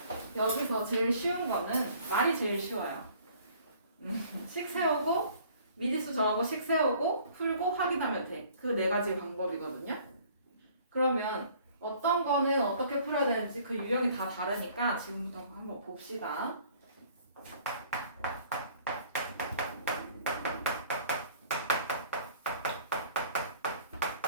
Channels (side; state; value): both; inverted; correlation -0.55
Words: 여기서 제일 쉬운 거는 말이 제일 쉬워요. 식 세우고 미지수 정하고 식 세우고 풀고 확인하면 돼. 그 네 가지 방법이거든요. 그러면 어떤 거는 어떻게 풀어야 되는지 그 유형이 다 다르니까 지금부터 한번 봅시다.